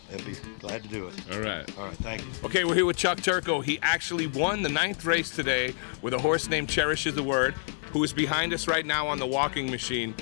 they'd be glad to do it. All right, thank you. Okay, we're here with Chuck Turco. He actually won the 9th race today with a horse named Cherishes the Word, who is behind us right now on the walking machine.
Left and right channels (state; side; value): silent; right; digital silence